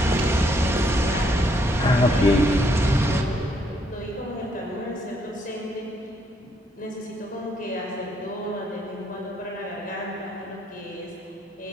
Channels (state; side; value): normal; both; correlation 0.71